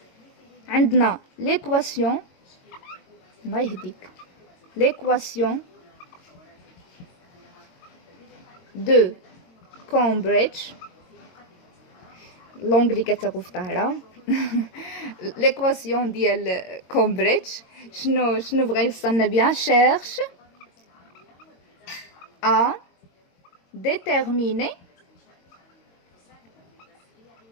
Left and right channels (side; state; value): right; late; 22 ms